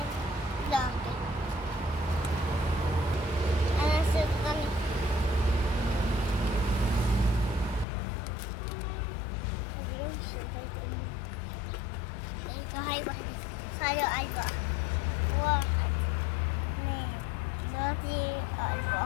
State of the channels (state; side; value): drops out; right; at 7.9 s